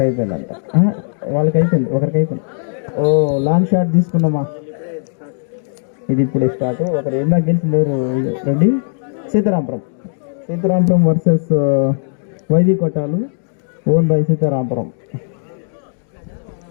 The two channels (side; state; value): right; silent; digital silence